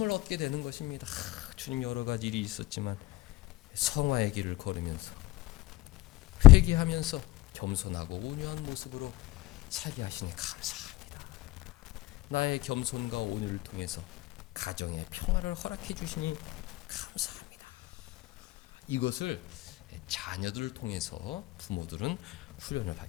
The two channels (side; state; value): right; quieter; 17.7 dB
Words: 얻게 되는 것입니다. 주님 여러 가지 일이 있었지만 성화의 길을 걸으면서 회개하면서 겸손하고 온유한 모습으로 살게 하시니 감사합니다. 나의 겸손과 온유를 통해서 가정의 평화를 허락해 주시니 감사합니다. 이것을 자녀들을 통해서 부모들은 훈련을